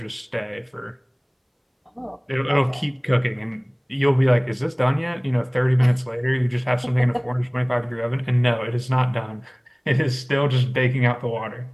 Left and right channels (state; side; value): identical; both; correlation 1.00